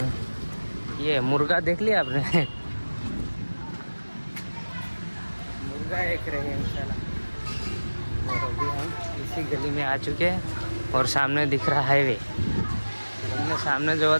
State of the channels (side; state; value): both; inverted; correlation -1.00